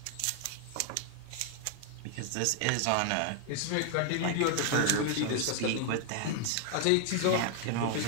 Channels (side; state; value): both; different; correlation 0.00